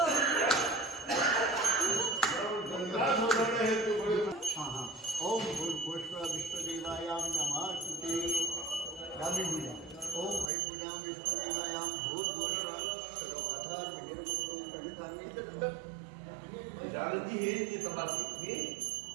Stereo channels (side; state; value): left; drops out; at 10.5 s